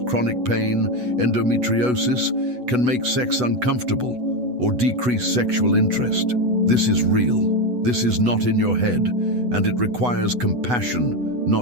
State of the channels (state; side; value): late; left; 8.1 ms